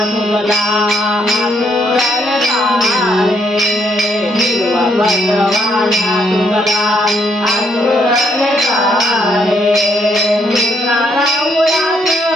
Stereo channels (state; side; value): normal; both; correlation 0.71